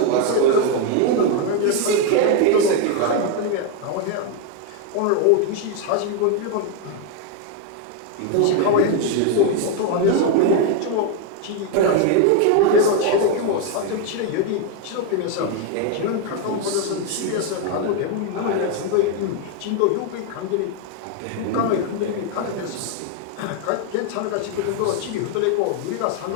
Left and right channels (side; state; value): both; different; correlation 0.01